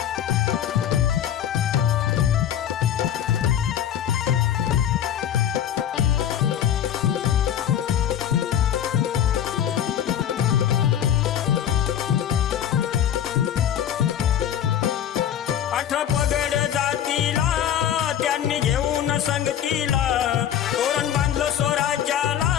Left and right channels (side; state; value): right; quieter; 10.0 dB